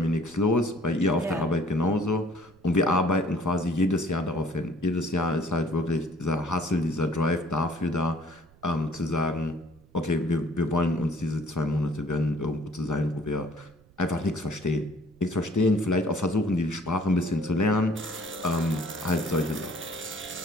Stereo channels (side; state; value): right; noise; rumble, 28 dB below the sound